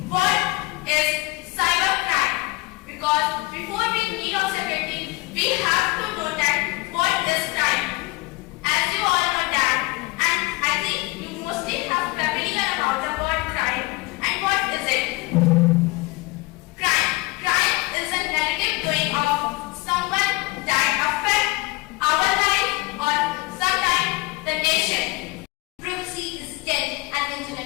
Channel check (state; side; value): quieter; right; 22.8 dB